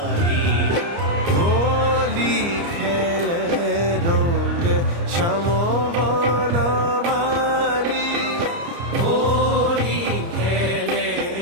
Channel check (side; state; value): left; late; 29 ms